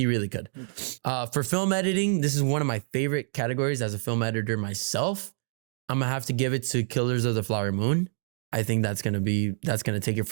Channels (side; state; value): left; silent; digital silence